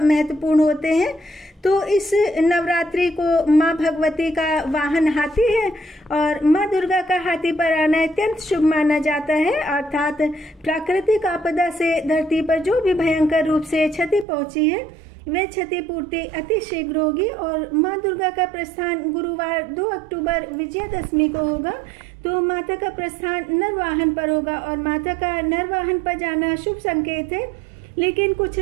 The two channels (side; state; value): left; drops out; at 14.2 s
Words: महत्वपूर्ण होते हैं। तो इस नवरात्रि को माँ भगवती का वाहन हाथी है और माँ दुर्गा का हाथी पर आना अत्यंत शुभ माना जाता है। अर्थात प्राकृतिक आपदा से धरती पर जो भी भयंकर रूप से क्षति पहुंची है वे क्षतिपूर्ति अति शीघ्र होगी। और माँ दुर्गा का प्रस्थान गुरुवार 2 अक्टूबर विजयादशमी को होगा। तो माता का प्रस्थान नरवाहन पर होगा और माता का नरवाहन पर जाना शुभ संकेत है। लेकिन कुछ